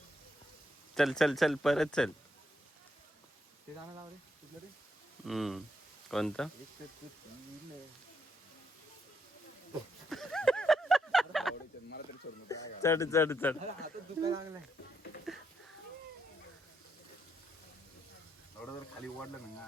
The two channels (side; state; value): both; normal; correlation 0.78